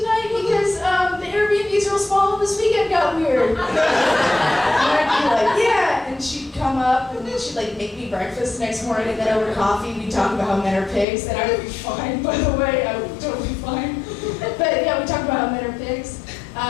Because the Airbnb's real small and this weekend got weird. And I'd be like, yeah. And she'd come up and then she'd like make me breakfast the next morning and then over coffee we'd talk about how men are pigs. And I would be fine, by the way. I would be totally fine. But yeah, we talked about how men are pigs.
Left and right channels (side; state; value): right; drops out; at 11.1 s